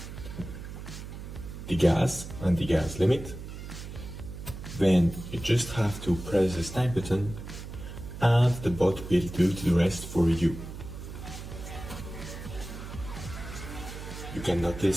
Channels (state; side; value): noise; right; hum, 10 dB below the sound